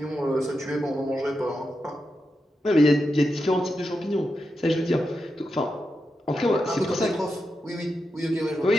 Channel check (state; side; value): normal; both; correlation 0.87